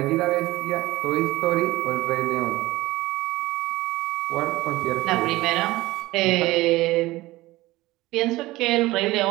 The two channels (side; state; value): left; quieter; 18.8 dB